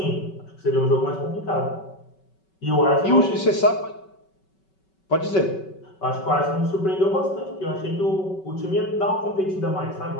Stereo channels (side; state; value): right; late; 5.3 ms